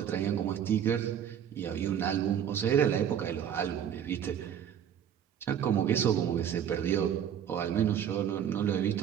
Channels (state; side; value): quieter; left; 9.1 dB